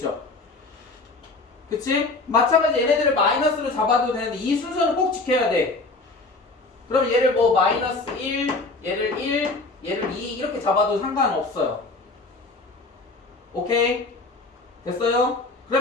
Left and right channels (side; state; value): right; quieter; 3.4 dB